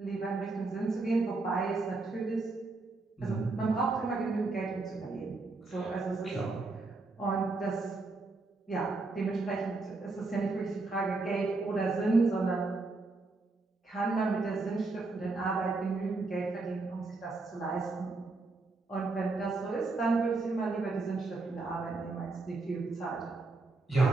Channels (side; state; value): left; quieter; 3.6 dB